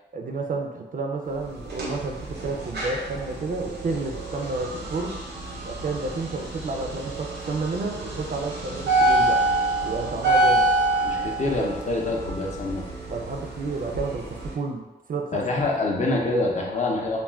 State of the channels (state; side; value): normal; both; correlation 0.39